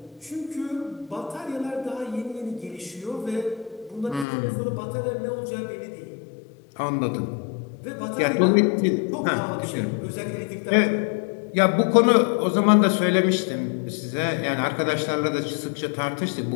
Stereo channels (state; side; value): drops out; right; at 4.2 s